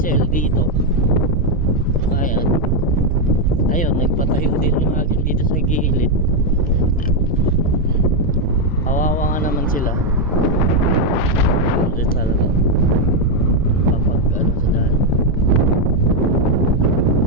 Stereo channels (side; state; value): both; normal; correlation 0.02